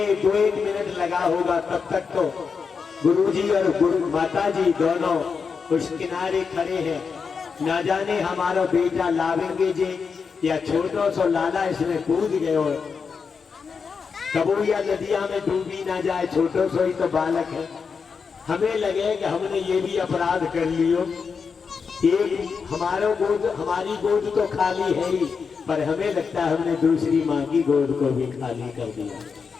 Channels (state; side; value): quieter; right; 5.6 dB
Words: 2-1 मिनट लगा होगा, तब तक तो गुरुजी और गुरु माता जी दोनों उस किनारे खड़े हैं। ना जाने हमारा बेटा लावेंगे जी या छोटो सो लाला इसमें कूद गए हो, कबू या नदिया में डूबी ना जाए, छोटो सो ही तो बालक है। हमें लगे कि हमने ये भी अपराध कर लियो, एक हमारी गोद तो खाली है ही, पर हमें लगता है हमने दूसरी माँ की गोद को भी खाली कर दिया।